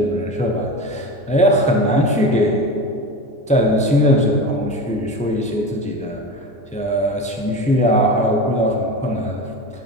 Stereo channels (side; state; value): both; normal; correlation 0.27